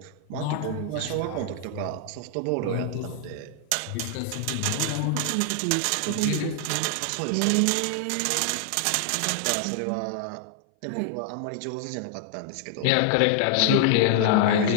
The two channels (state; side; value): different; both; correlation 0.00